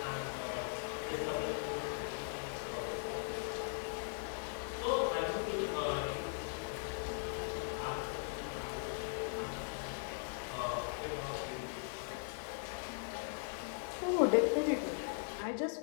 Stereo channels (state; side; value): silent; right; digital silence